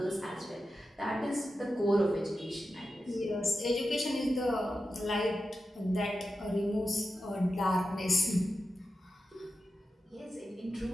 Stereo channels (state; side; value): normal; both; correlation 0.91